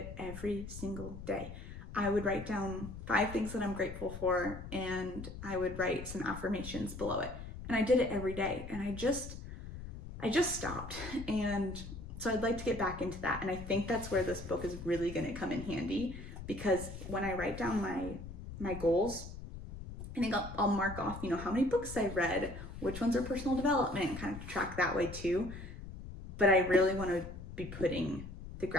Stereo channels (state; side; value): noise; left; rumble, 11 dB below the sound